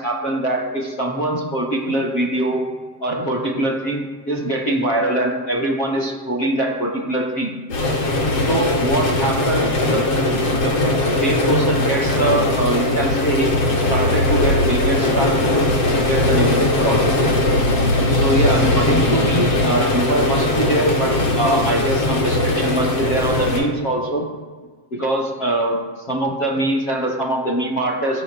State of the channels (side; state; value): right; late; 7.6 ms